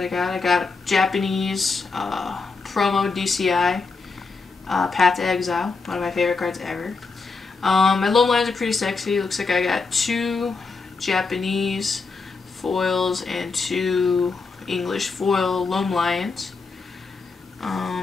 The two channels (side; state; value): right; quieter; 4.3 dB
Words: I got. I got Japanese promo DCI Path to Exile, one of my favorite cards ever. My loam lines are pretty sexy. Looks like I got 2 Japanese foils and 2 English foil Loam Lions.